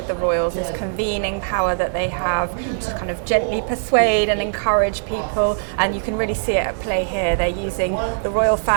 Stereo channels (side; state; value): left; silent; digital silence